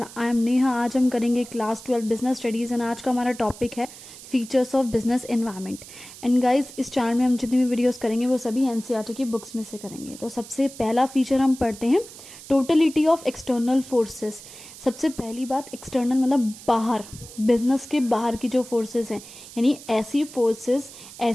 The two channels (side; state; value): right; noise; hiss, 16 dB below the sound